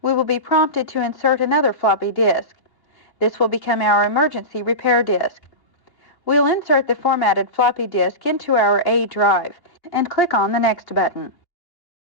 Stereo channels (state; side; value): late; right; 2.8 ms